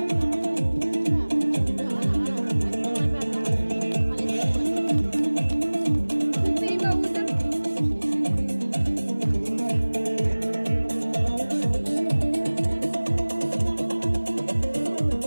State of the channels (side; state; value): both; inverted; correlation -1.00